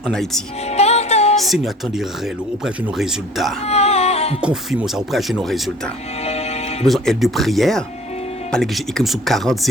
en Haïti. Seigneur, attendez auprès de nos résultats. Nous confirmons ça auprès de nos résultats. Nous avons besoin d'aide de prière. Par que j'ai écrit sur 40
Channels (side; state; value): both; normal; correlation 0.49